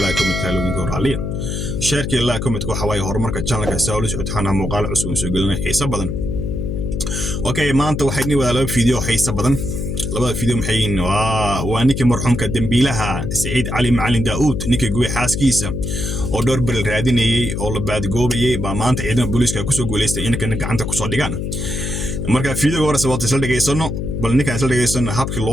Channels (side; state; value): left; noise; hum, 3 dB below the sound